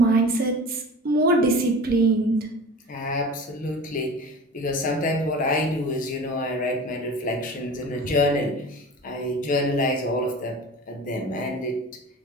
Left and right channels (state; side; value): normal; both; correlation 0.36